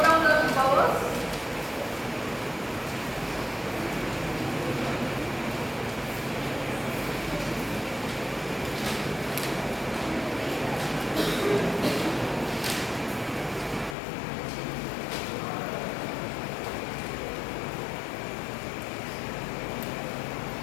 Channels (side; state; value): right; drops out; at 14.0 s